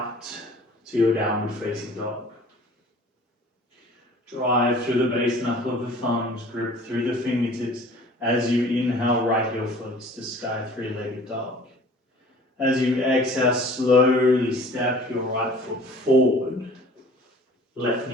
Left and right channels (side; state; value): both; normal; correlation 0.48